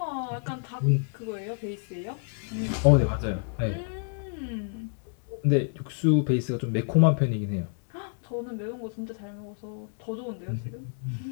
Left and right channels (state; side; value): silent; right; 59 dB below the other